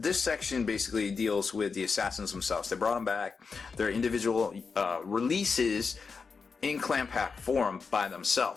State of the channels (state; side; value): quieter; right; 5.1 dB